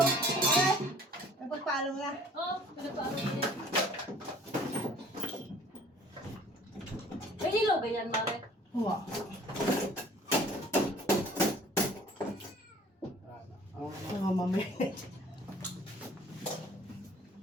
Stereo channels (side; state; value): both; normal; correlation 0.52